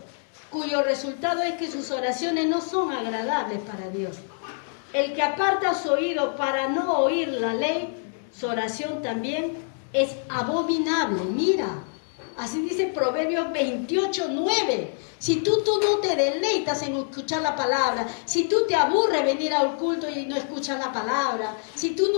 cuyo resultado es que sus oraciones no son agradables para Dios. El que aparta su oído para no oír la ley, su oración también es abominable. Mira, así dice Proverbios 28, 9. Si tú no te deleitas en escuchar la palabra, si tú te aburres venir al culto y no escuchas la palabra, si tú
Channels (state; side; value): silent; right; 61 dB below the other